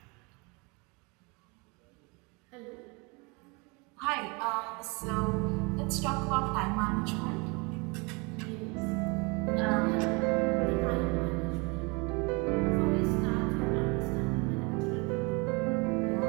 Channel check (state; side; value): quieter; left; 29.4 dB